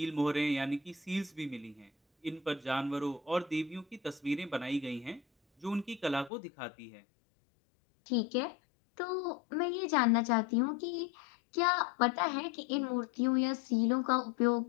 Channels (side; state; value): right; drops out; at 6.3 s